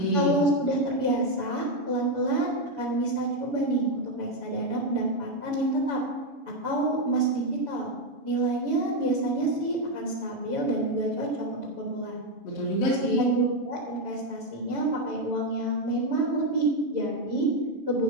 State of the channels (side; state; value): left; late; 7.0 ms